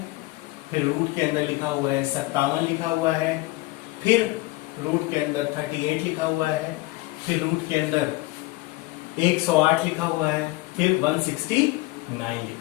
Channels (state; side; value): quieter; right; 20.8 dB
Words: फिर रूट के अंदर लिखा हुआ है 57 लिखा हुआ है, फिर रूट के अंदर 38 लिखा हुआ है, फिर रूट के अंदर 108 लिखा हुआ है, फिर 169